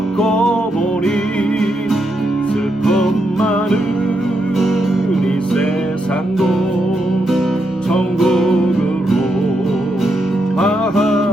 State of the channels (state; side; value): normal; both; correlation 0.82